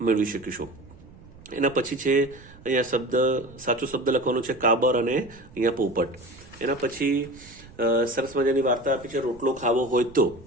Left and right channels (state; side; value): noise; right; rumble, 21 dB below the sound